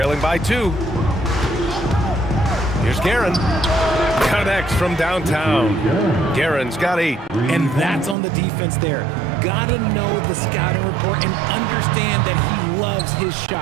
by 2. Here's Guerin. Connects from downtown. Guerin's got 8. And that's on the defense there. Gotta know the scouting report and understand that he loves his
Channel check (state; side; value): drops out; left; at 8.2 s